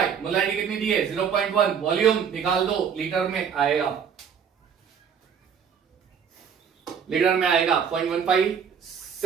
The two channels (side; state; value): left; quieter; 7.3 dB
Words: मोलरिटी कितनी दी है 0.1, वॉल्यूम निकाल दो लीटर में आएगा, लीटर में आएगा